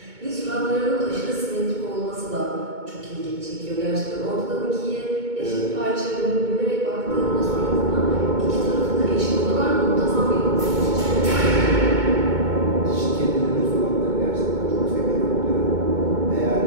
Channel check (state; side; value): late; left; 2.2 ms